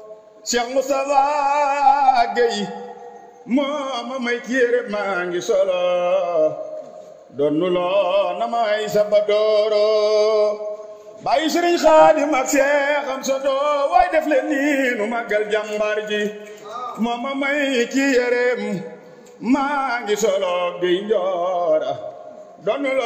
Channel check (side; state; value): both; identical; correlation 1.00